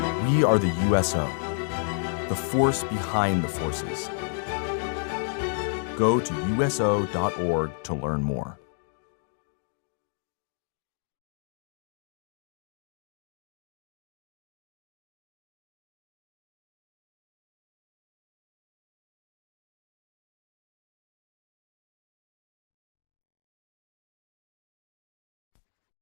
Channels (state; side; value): silent; right; digital silence